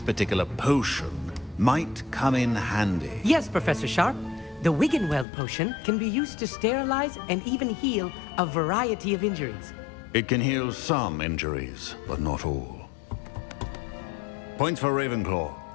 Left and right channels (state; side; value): drops out; right; at 5.2 s